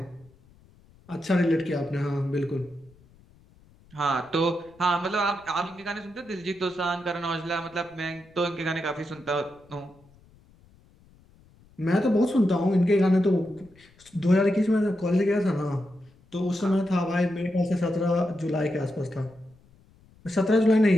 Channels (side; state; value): left; noise; rumble, 28 dB below the sound